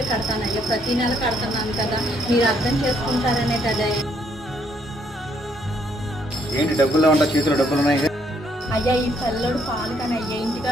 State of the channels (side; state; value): both; normal; correlation 0.70